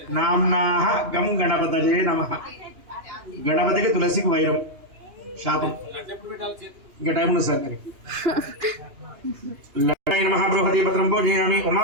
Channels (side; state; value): left; late; 2.8 ms